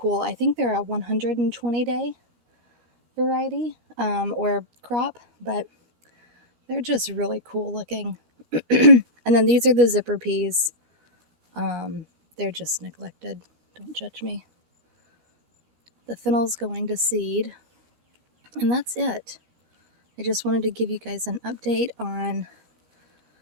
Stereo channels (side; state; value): left; late; 17 ms